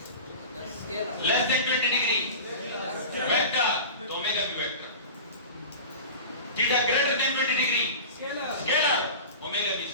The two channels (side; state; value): both; inverted; correlation -0.33